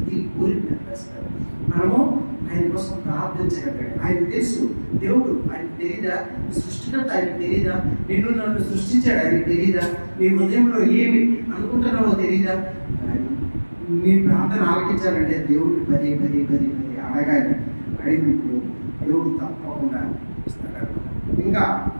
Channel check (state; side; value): inverted; both; correlation -1.00